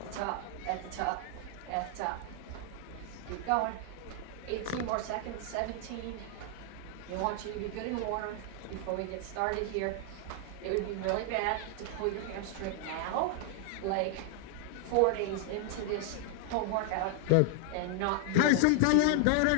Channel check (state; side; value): different; both; correlation 0.00